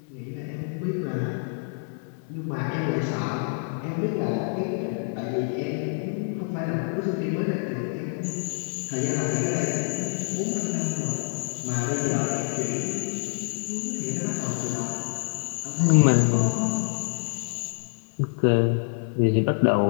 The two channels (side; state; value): right; silent; 60 dB below the other